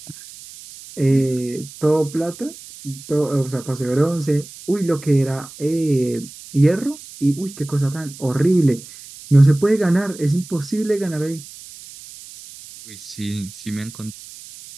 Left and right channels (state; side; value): noise; right; hiss, 17 dB below the sound